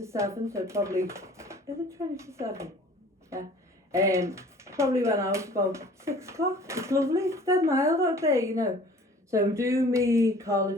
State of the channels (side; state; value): both; normal; correlation 0.49